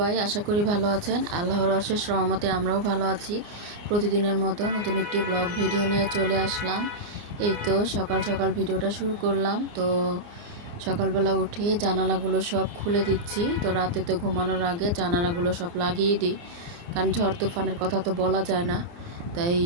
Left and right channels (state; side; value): late; left; 29 ms